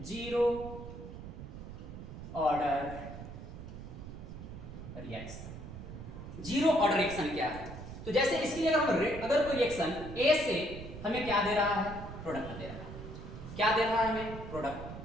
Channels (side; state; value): right; noise; rumble, 11 dB below the sound